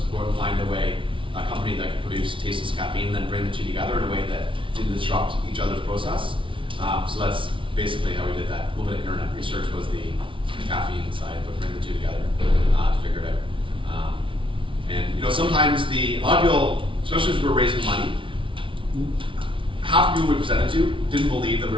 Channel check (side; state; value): left; late; 0.25 ms